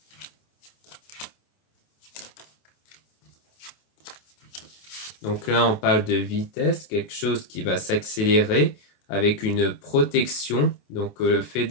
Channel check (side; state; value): right; late; 28 ms